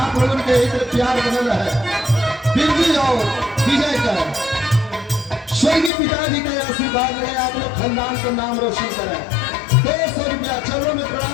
लोगों के इधर प्यार बनल है। बिरजू जाओ विजय कर, स्वर्गीय पिताजी का आशीर्वाद रहे, आप लोग खानदान का नाम रोशन करें। 200 रुपया, चलो में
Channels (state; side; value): drops out; right; at 5.9 s